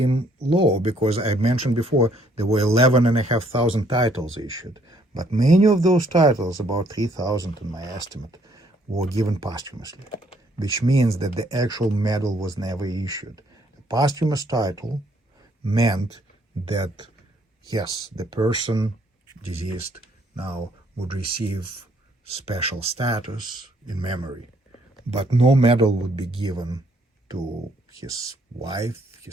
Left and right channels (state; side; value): normal; both; correlation 0.66